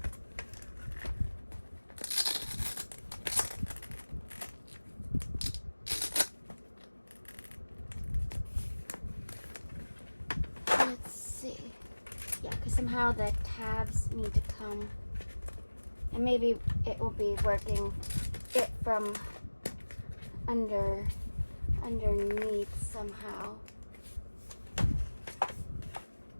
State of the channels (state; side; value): inverted; both; correlation -1.00